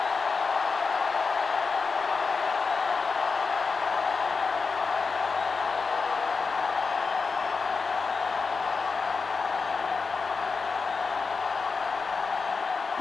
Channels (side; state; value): right; quieter; 4.7 dB